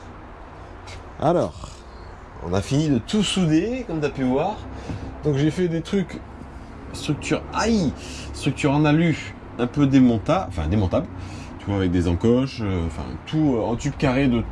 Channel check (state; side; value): identical; both; correlation 1.00